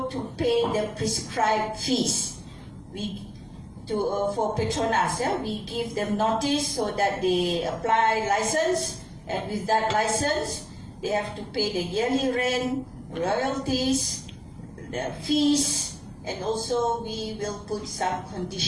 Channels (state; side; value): identical; both; correlation 1.00